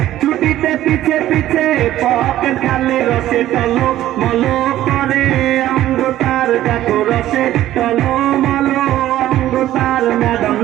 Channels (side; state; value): left; quieter; 13.6 dB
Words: ছুটিতে পিছে পিছে পকেট খালি রসে টলো মলো করে অঙ্গ তার দেখো রসে টলো মলো অঙ্গ তার ম্যাডাম